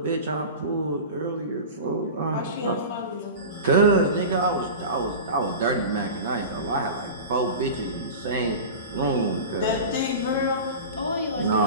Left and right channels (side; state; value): both; inverted; correlation -0.31